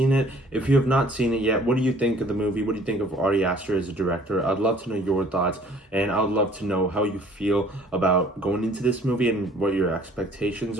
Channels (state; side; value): normal; both; correlation 0.55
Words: it? If you have not seen it yet, what do you think of the movie? What do you think of Ari Aster as a director? I'd love to know your thoughts, and I'd love to know how you feel about going into this movie and what your expectations